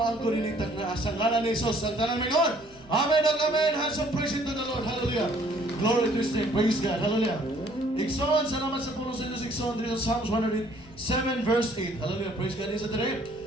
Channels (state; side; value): noise; right; rumble, 26 dB below the sound